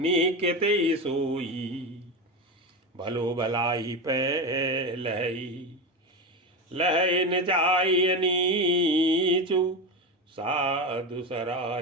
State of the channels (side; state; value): both; normal; correlation 0.19